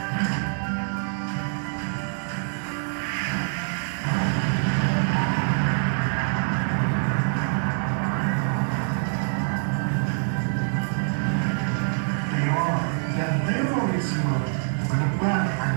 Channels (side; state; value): left; silent; 62 dB below the other